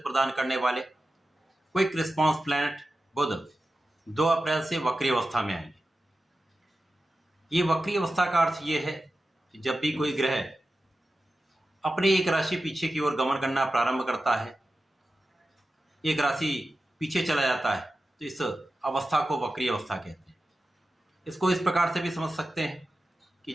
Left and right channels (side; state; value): both; normal; correlation 0.93